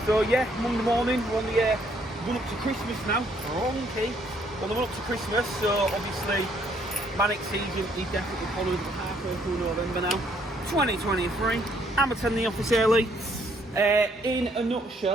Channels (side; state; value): both; normal; correlation 0.68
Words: So yeah, Monday morning, we're on the run up to Christmas now. Wrong-key. On the run up to Christmas, so obviously manic season is definitely following halfway through November now. 2023. I'm attending the office early. In a